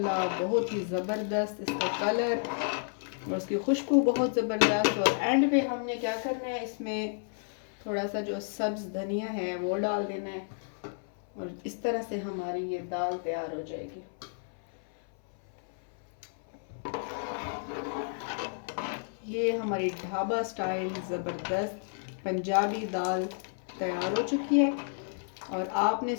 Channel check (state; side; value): silent; right; 57 dB below the other